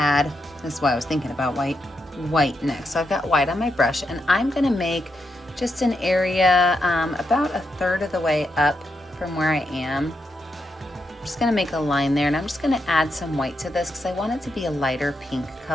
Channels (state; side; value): normal; both; correlation 0.83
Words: this is why I was thinking about white next. So I've got white on my brush, and I'm gonna make just an area about 1/3 of the way up from where I am. I'm just gonna make a line there, and I'm just gonna add some white to this because I want it to be a lighter pink